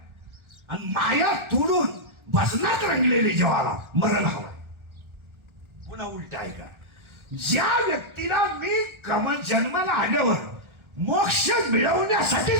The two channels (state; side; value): late; left; 1.4 ms